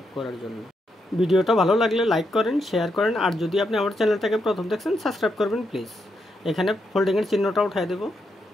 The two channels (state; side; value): normal; both; correlation 0.81